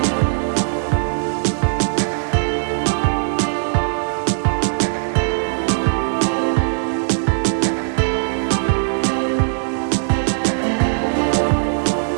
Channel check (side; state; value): left; silent; digital silence